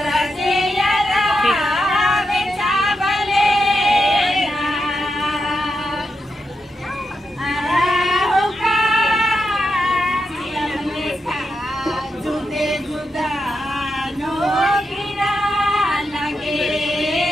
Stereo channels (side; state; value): both; normal; correlation 0.86